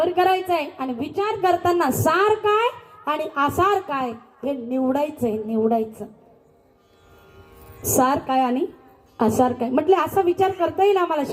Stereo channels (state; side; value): identical; both; correlation 1.00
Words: करायचा आहे आणि विचार करताना सार काय आणि आसार काय हे निवडायचंय. निवडायचं सार काय आणि आसार काय म्हटले असा विचार करता येईल आम्हाला